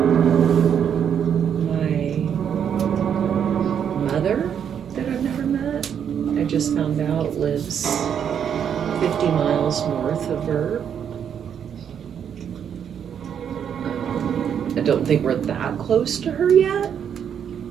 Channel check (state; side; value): quieter; left; 8.3 dB